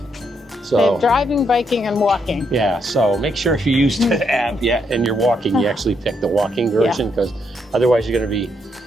So have driving, biking, and walking. yeah, so make sure if you use the app and you're walking, you actually pick the walking version because otherwise you're going to be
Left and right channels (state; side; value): normal; both; correlation 0.76